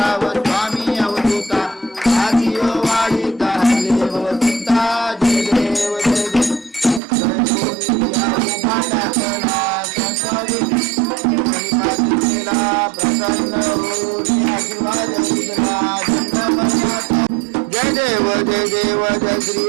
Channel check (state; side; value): drops out; left; at 7.0 s